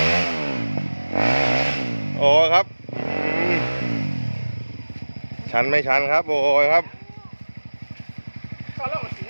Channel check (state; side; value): inverted; both; correlation -1.00